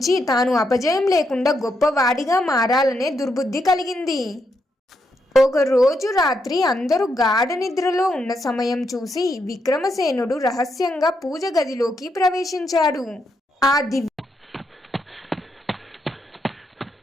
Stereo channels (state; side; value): normal; both; correlation 0.80